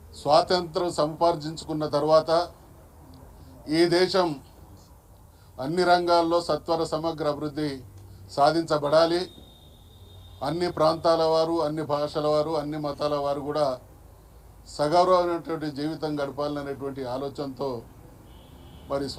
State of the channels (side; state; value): both; identical; correlation 1.00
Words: స్వాతంత్రం సంపాదించుకున్న తర్వాత ఈ దేశం అన్ని రంగాల్లో సత్వర సమగ్ర అభివృద్ధి సాధించబడాలి. అన్ని ప్రాంతాల వారు, అన్ని భాషల వారు, అన్ని మతాల వారు కూడా సగౌరవమైనటువంటి జీవితం గడపాలనేటువంటి ఆలోచనతో మరి